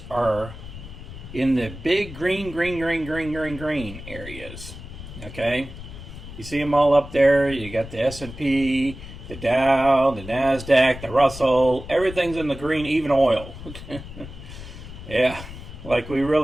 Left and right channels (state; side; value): noise; left; rumble, 13 dB below the sound